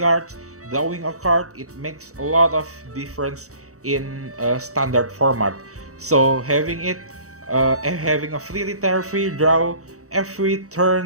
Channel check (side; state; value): left; late; 0.65 ms